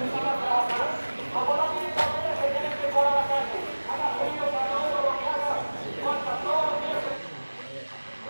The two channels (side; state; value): both; inverted; correlation -1.00